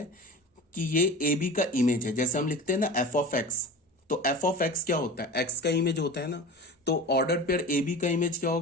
कि ये ए बी का इमेज है। जैसे हम लिखते हैं ना एफ ऑफ एक्स, तो एफ ऑफ एक्स क्या होता है, एक्स का इमेज होता है ना। तो ऑर्डर्ड पेयर ए बी का इमेज क्या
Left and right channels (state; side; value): normal; both; correlation 0.34